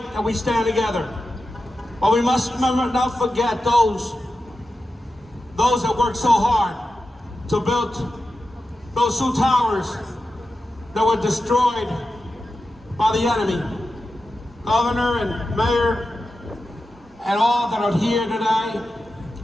that we stand together. But we must remember not forget those that worked so hard to build those two towers that were destroyed by the enemy. Governor and Mayor and all that are here today,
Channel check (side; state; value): both; normal; correlation 0.92